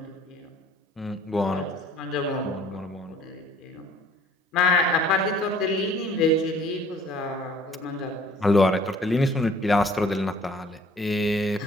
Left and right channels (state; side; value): normal; both; correlation 0.55